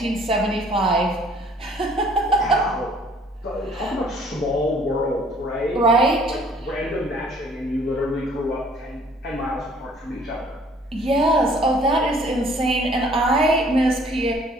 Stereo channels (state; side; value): normal; both; correlation 0.57